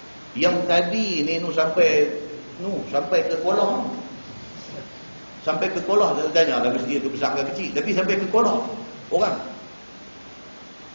Yang tadi ni sampai ke Kolah. Sampai ke Kolah, saya tanya lah masjid tu besar ke kecil, tapi sampai ke Kolah orang.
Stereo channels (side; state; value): both; inverted; correlation -1.00